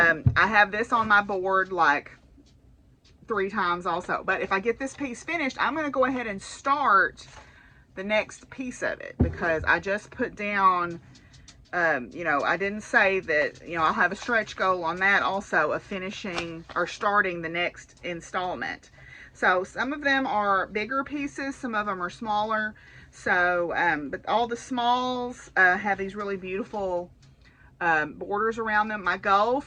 have this on my board like 3 times also. But if I get this piece finished, I'm going to go ahead and start the next piece of it. Because I just put down, you know, I didn't say that, you know, I'll have a stretch goal on that also of finishing or starting the next installment. So some of them are bigger pieces, some of them are smaller. So, but all the smalls have these really beautiful borders around them. My goal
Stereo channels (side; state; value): both; identical; correlation 1.00